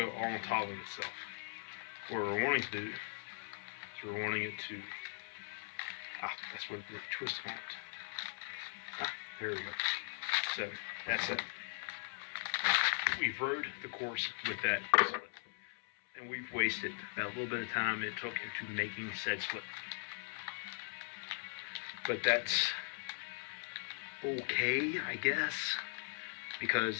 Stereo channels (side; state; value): right; silent; 51 dB below the other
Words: all on top of itself. What we're wanting to do, we're wanting it to That's what the twist on it. There we go. So that's it. We've rode the course with that split, and we've wasted that little bit of time it took into making said split. But that's okay, I guess, because